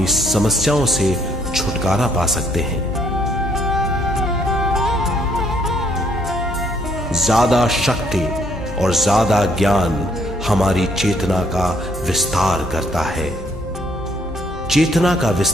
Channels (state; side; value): normal; both; correlation 0.67